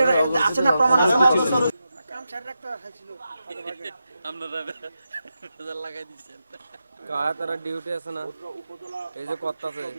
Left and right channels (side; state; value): both; inverted; correlation -0.88